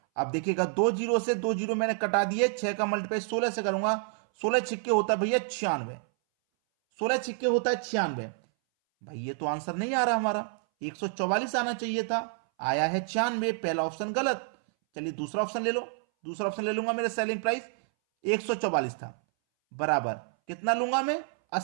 अब देखिएगा 2 जीरो से 2 जीरो मैंने कटा दिए, 6 का मल्टीप्लाई 16 से करूंगा, 16 छिक्के होता है भैया 96, 16 छिक्के होता है 96। भाई ये तो आंसर नहीं आ रहा हमारा, 144 आना चाहिए था, आया है 96, पहला ऑप्शन गलत। चलिए दूसरा ऑप्शन ले लो, दूसरा ऑप्शन ले लूंगा, मेरा सेलिंग प्राइस 144 था, बराबर कितना लूंगा मैं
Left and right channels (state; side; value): silent; left; 59 dB below the other